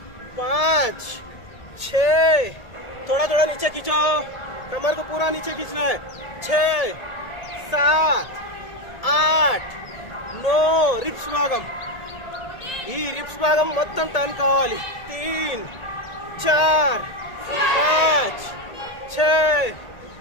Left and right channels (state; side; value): late; right; 1.8 ms